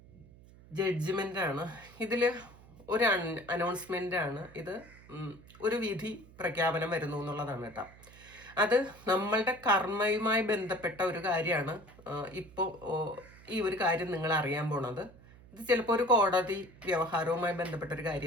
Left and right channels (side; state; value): right; noise; hum, 22 dB below the sound